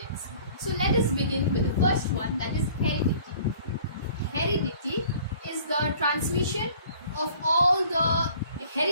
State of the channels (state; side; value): inverted; both; correlation -0.51